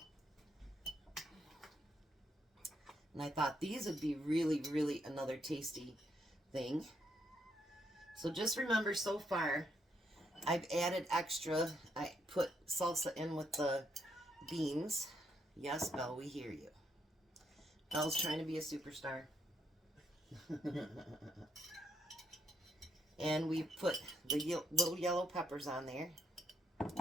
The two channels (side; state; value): both; normal; correlation 0.76